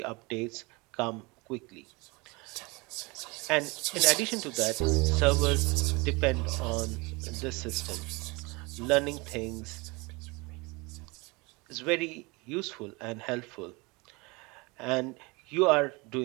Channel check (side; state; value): left; quieter; 26.1 dB